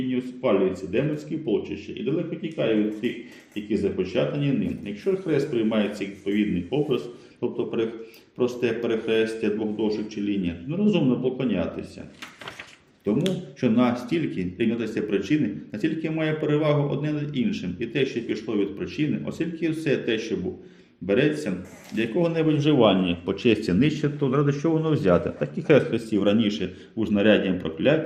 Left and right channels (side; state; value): both; identical; correlation 1.00